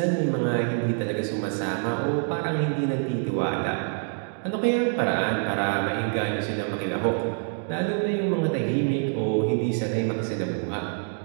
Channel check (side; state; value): left; silent; 61 dB below the other